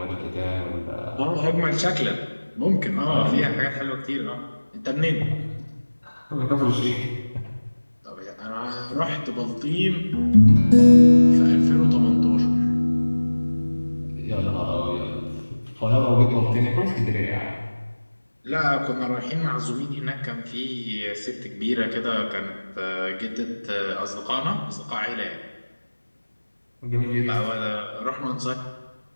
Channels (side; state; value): both; inverted; correlation -1.00